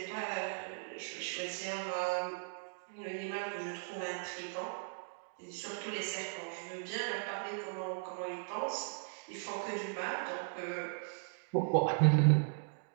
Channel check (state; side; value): silent; left; digital silence